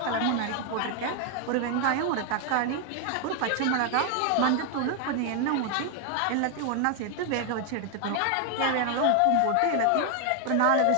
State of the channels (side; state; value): both; different; correlation 0.00